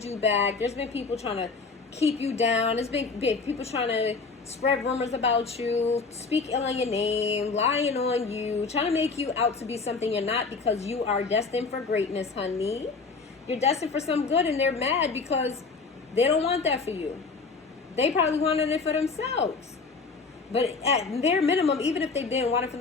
you back. There's been people trying to keep you down. There's been people trying to spread rumors about you, speak ill on your name, lying on you, trying to make you out to be something you're not, because you are destined for greatness, honey. You're destined for some good, and they're mad because they don't want that for you. They probably wanted it for themselves. But at their minimum, even if they didn't want it for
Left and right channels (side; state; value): right; quieter; 4.4 dB